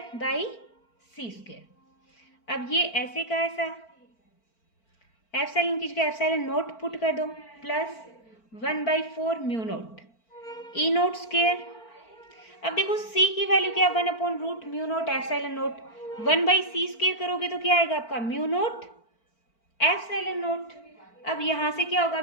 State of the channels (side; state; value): right; late; 4.5 ms